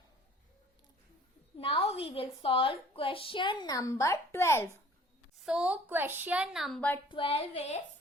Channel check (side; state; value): both; normal; correlation 0.52